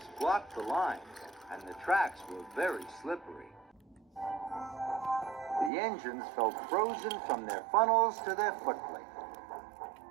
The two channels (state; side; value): drops out; left; at 5.7 s